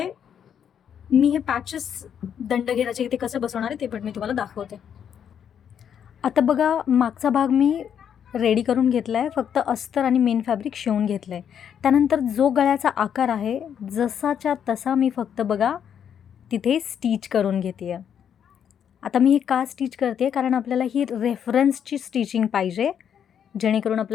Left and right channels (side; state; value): right; quieter; 8.5 dB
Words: मी हे पॅचेस दंडघेराचे इथे कसं बसवणार आहे ते पण मी तुम्हाला दाखवते. आता बघा मागचा भाग मी रेडी करून घेतला आहे, फक्त अस्तर आणि मेन फॅब्रिक शिवून घेतलं आहे. त्यानंतर जो गळ्याचा आकार आहे जसाच्या तसा मी फक्त बघा तिथे स्टिच करून घेते आहे. आता मी हे का स्टिच करते, कारण आपल्याला ही रेफरन्सची स्टिचिंग पाहिजे, जेणेकरून